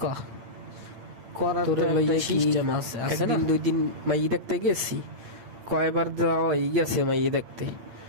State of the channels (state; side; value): late; left; 8.9 ms